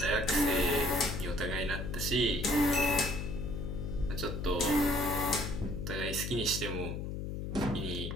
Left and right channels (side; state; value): left; noise; hum, 4 dB below the sound